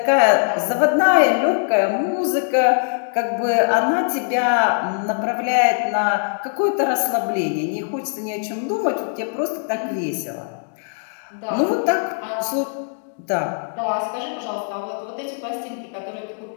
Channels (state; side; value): silent; right; digital silence